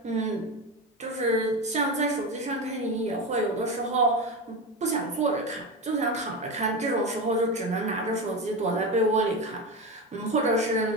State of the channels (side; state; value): both; normal; correlation 0.19